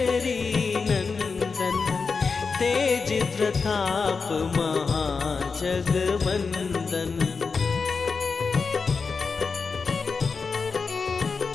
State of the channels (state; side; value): quieter; right; 4.9 dB